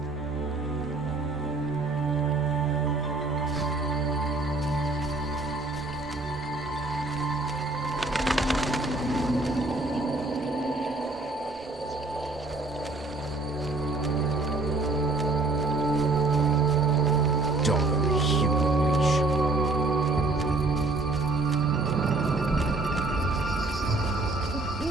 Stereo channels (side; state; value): left; quieter; 3.2 dB